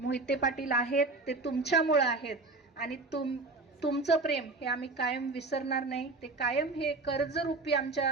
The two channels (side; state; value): left; quieter; 3.5 dB